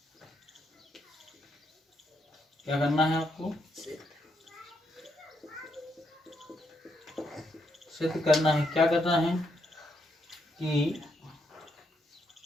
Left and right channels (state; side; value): normal; both; correlation 0.78